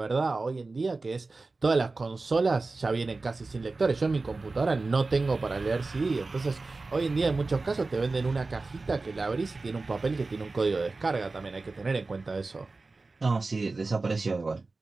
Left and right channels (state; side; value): quieter; left; 3.6 dB